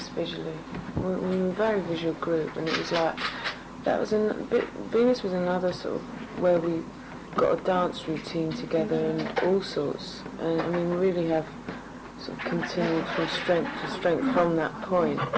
visually. We were a very visual group, and it was like, Venus was another sort of where we got a dance routine together and all sorts. And I mean, we really have sort of continued from strength to strength from that point.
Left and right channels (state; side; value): identical; both; correlation 1.00